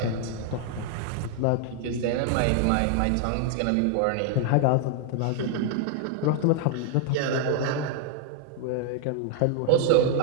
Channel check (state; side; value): different; both; correlation 0.00